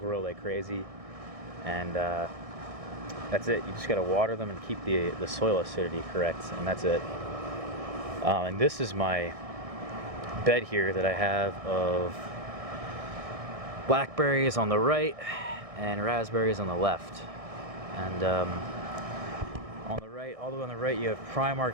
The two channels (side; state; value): left; late; 1.6 ms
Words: like crazy. And that's it. You just got to water them and keep the soil acidity correct, and that's it. And this is my bed here that I have of blackberries on the right and raspberries on the left. And on the right, all the way on the right, you have